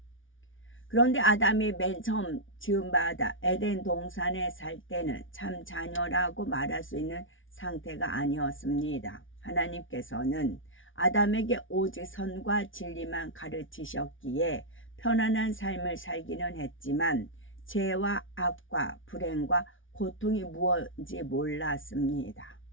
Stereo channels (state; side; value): late; right; 0.57 ms